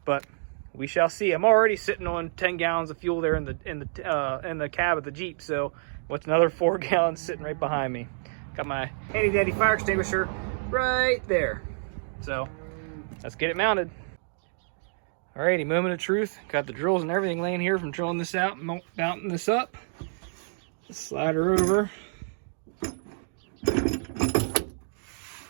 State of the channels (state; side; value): silent; left; digital silence